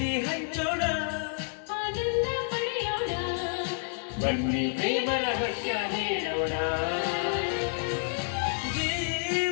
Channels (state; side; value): silent; right; 58 dB below the other